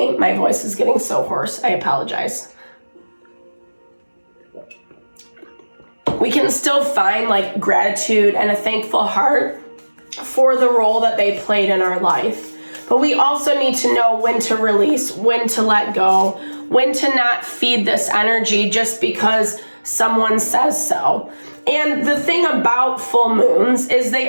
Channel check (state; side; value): inverted; both; correlation -1.00